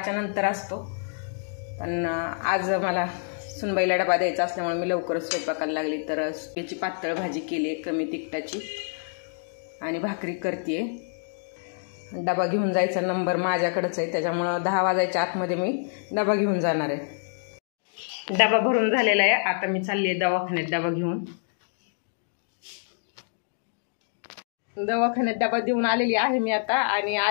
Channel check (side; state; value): right; silent; digital silence